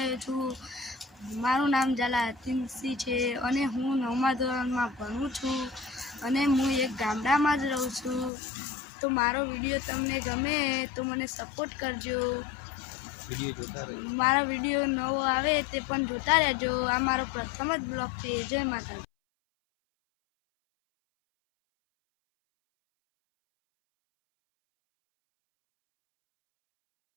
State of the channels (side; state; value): right; drops out; at 8.3 s